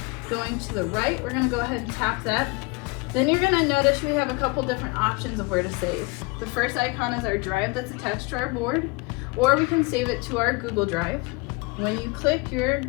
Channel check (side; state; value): right; quieter; 27.5 dB